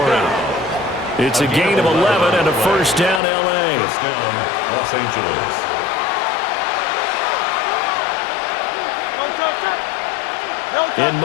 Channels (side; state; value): right; drops out; at 3.2 s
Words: It's a gain of 11 and a first down, L.A. First down, Los Angeles. In